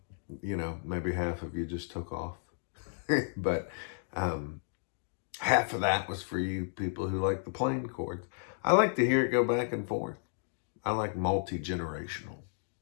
You know, maybe half of you just took off. But half of that was for you people who like the plain chords. I like to hear it go back and forth. I like multi-generational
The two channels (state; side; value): silent; right; digital silence